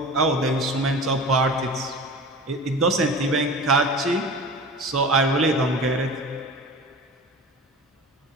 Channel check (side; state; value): both; normal; correlation 0.36